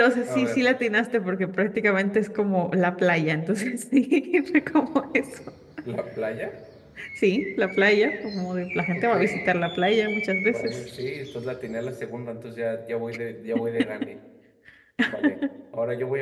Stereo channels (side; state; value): both; identical; correlation 1.00